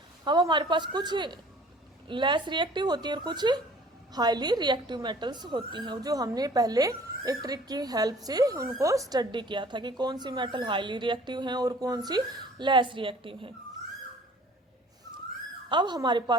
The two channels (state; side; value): normal; both; correlation 0.51